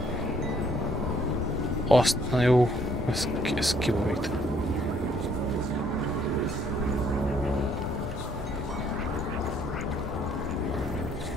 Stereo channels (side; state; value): both; normal; correlation 0.65